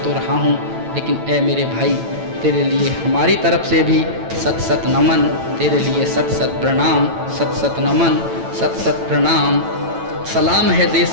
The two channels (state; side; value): late; left; 9.0 ms